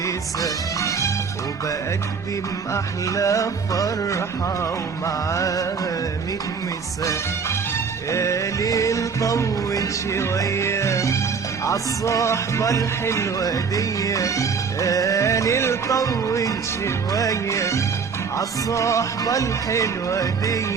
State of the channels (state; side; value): quieter; left; 5.7 dB